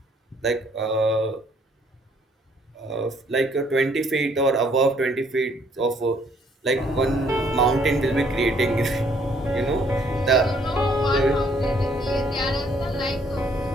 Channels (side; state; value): both; normal; correlation 0.65